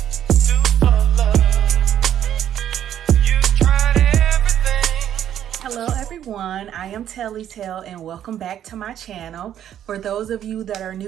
do for love? You tried everything. Hello everyone, I am Tellytale and welcome back to my channel. For those of you that are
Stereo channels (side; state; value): left; quieter; 10.5 dB